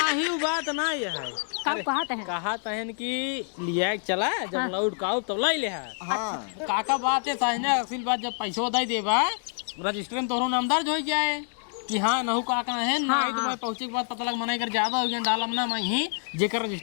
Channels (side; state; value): right; silent; 60 dB below the other